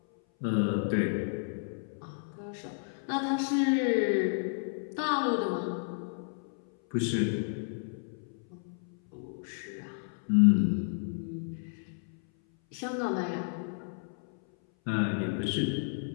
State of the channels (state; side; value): silent; right; 57 dB below the other